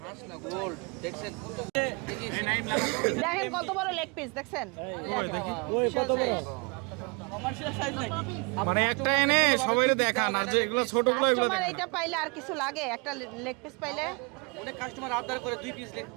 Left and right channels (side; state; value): left; quieter; 32.1 dB